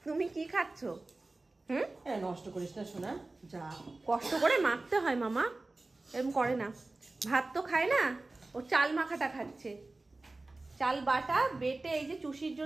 তুমি কি খাচ্ছো? হুম, নষ্ট করিস না শোনা, যা। কষ্ট করে মাখতে হয় মামা, এরকম করে না। ভাত তো খায় না, ও চাল মাখাটা খাচ্ছে। চাল বাটা বেটে এই যে চুষির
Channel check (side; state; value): left; quieter; 3.1 dB